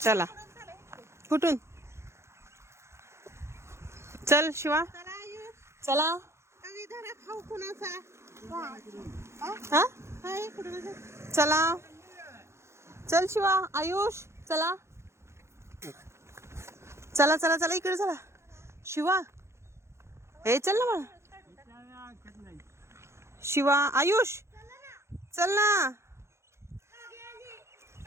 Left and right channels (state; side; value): late; left; 0.13 ms